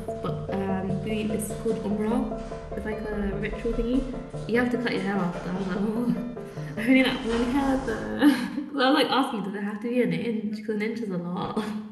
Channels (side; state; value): both; identical; correlation 1.00